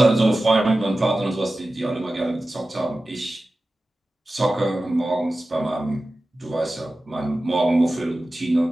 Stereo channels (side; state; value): both; normal; correlation 0.95